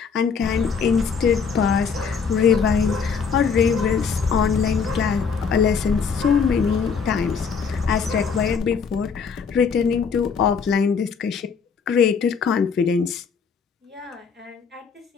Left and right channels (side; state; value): right; quieter; 5.9 dB